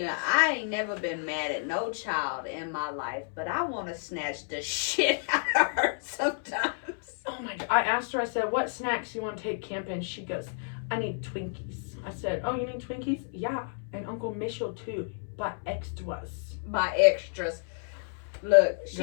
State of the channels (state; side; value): silent; right; 58 dB below the other